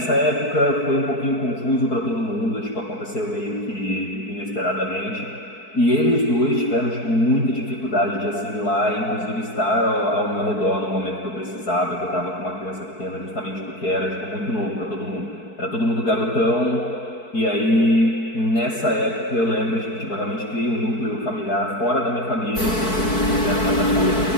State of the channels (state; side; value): late; right; 4.6 ms